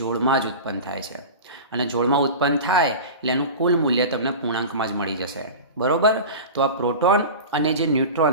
જ ઉત્પન્ન થાય છે, અને જોડમાં ઉત્પન્ન થાય એટલે એનું કુલ મૂલ્ય તમને પૂર્ણાંકમાં જ મળી જશે. બરાબર? તો આ પ્રોટોન અને જે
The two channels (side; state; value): both; inverted; correlation -0.31